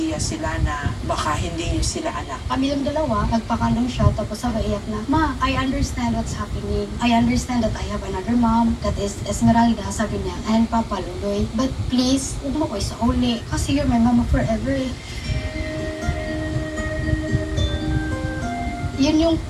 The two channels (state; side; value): identical; both; correlation 1.00